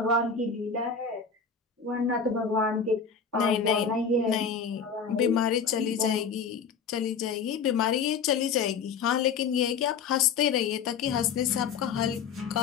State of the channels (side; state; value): right; quieter; 6.0 dB